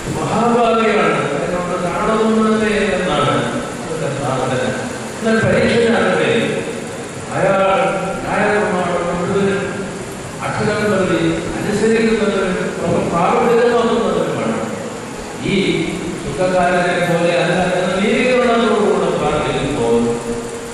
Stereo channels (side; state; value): both; identical; correlation 1.00